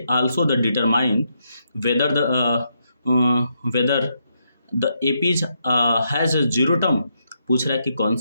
also the determine whether the APs has 0 term. पूछ रहा है कि कौन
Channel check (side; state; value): both; inverted; correlation -0.79